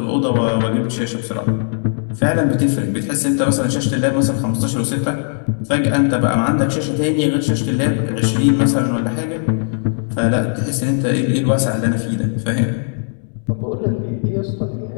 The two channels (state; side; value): silent; right; 62 dB below the other